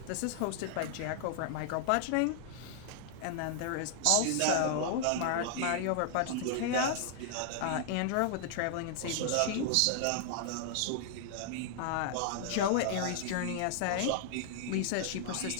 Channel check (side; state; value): both; different; correlation -0.01